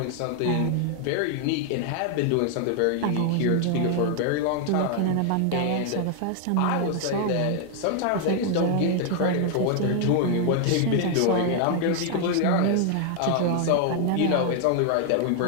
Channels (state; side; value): different; both; correlation 0.00